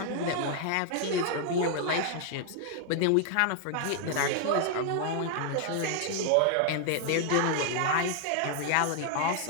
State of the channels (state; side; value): different; both; correlation 0.00